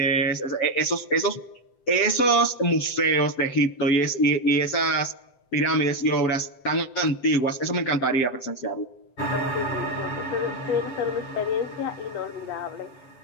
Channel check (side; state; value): right; late; 7.7 ms